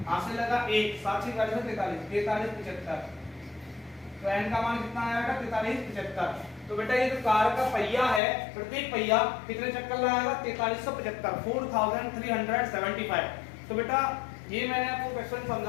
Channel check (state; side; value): drops out; right; at 8.2 s